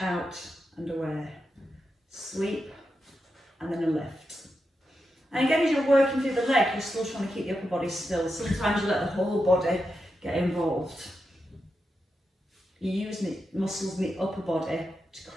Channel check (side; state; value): both; normal; correlation 0.87